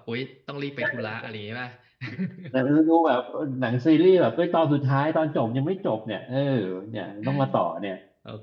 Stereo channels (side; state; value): both; identical; correlation 1.00